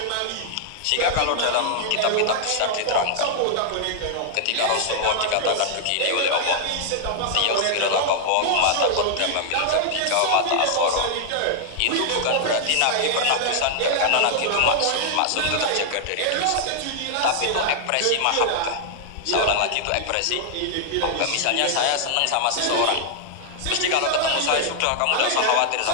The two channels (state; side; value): different; both; correlation -0.01